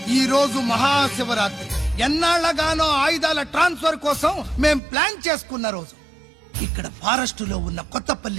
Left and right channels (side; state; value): left; drops out; at 4.8 s